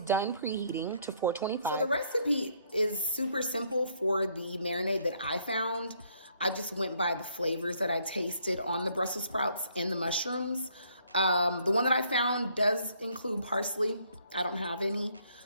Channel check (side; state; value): both; inverted; correlation -0.67